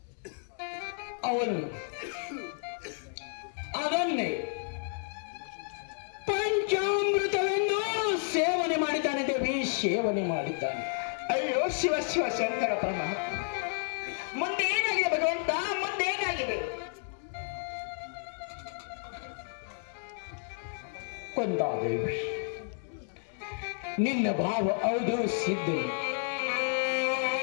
ಅವನು ಅದನ್ನೇ ಪಂಚಾಮೃತವೆಂದು ಸೇವನೆ ಮಾಡಿದ್ದಾನೆ ದೇವಿ, ಸೇವನೆ ಮಾಡಿದ್ದಾನೆ. ಅಯ್ಯೋ ಶಿವ ಶಿವ ಶಂಕರ ಪರಮಾತ್ಮ, ಮುಂದೆ ಏನಾಗಿದೆ ಭಗವಂತ? ಮುಂದೆ ಏನಾಗಿದೆ? ಕೊಂದಾದೇವಿ, ನಿನ್ನ ಭಾವ ಹೌದು ಸಿದ್ಧನು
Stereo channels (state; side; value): silent; right; 57 dB below the other